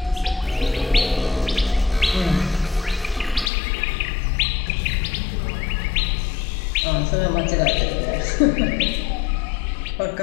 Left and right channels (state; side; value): drops out; right; at 3.5 s